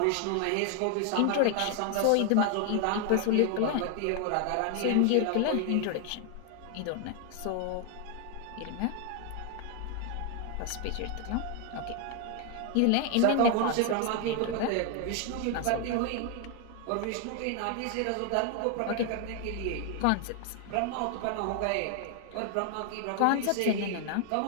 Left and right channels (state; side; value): different; both; correlation 0.00